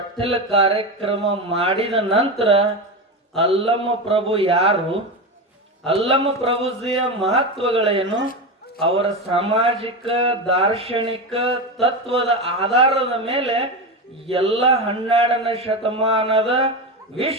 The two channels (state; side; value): normal; both; correlation 0.18